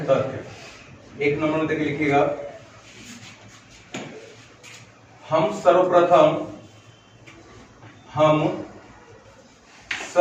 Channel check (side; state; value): both; identical; correlation 1.00